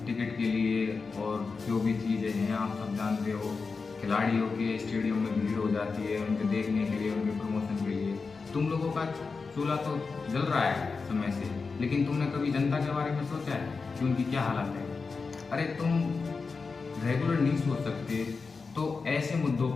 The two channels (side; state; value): right; quieter; 4.6 dB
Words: टिकट के लिए, और जो भी चीज़ें हैं आप सब जानते हो, खिलाड़ियों के स्टेडियम में भीड़ हो जाती है उनके देखने के लिए, उनके प्रमोशन के लिए। तुम लोगों का चूल्हा तो जल रहा है समय से, लेकिन तुमने कभी जनता के बारे में सोचा है कि उनकी क्या हालत है? अरे तुम रेगुलर नहीं सोच सकते तो ऐसे मुद्दों